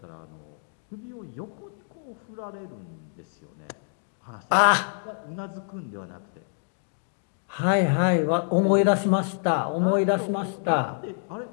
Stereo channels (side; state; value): right; silent; digital silence